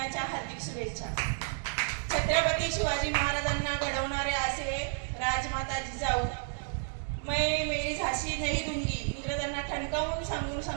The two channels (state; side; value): silent; left; 57 dB below the other